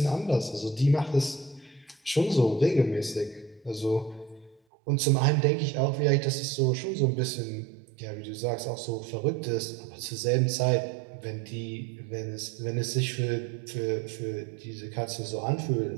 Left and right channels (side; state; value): left; drops out; at 4.6 s